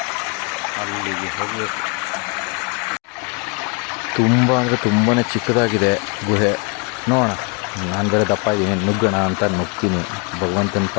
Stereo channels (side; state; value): right; quieter; 33.4 dB